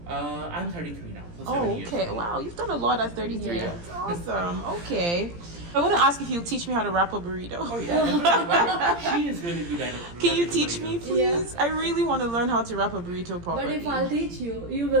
I'm 33 now. So 7 Oh, years. okay. Wow, you've done a lot at 33. Yeah. That's awesome. Okay. I want to ask if you'll teach me how to wrap a burrito. Oh yeah. She is really good at it. Can you teach me, please? I really want to learn how to wrap a burrito But properly. if I'll teach you, you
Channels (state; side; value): late; left; 17 ms